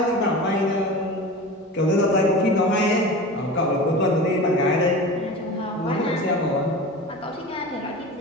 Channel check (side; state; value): both; normal; correlation 0.32